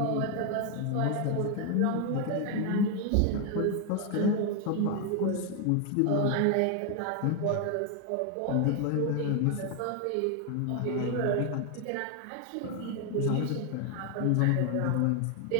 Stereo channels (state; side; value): different; both; correlation 0.01